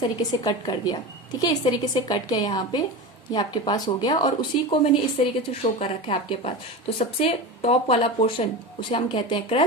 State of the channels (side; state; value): both; normal; correlation 0.25